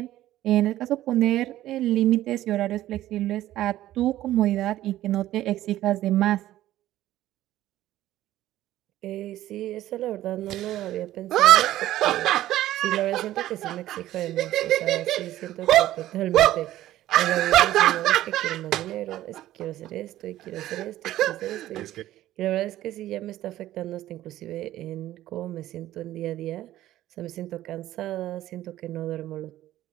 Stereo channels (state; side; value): quieter; left; 14.2 dB